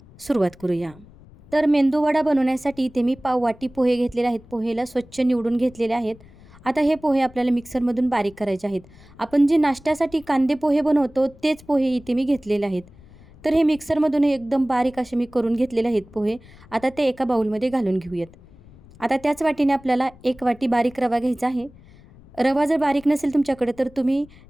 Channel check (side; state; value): left; noise; rumble, 23 dB below the sound